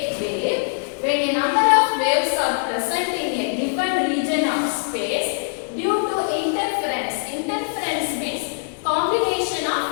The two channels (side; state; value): right; silent; digital silence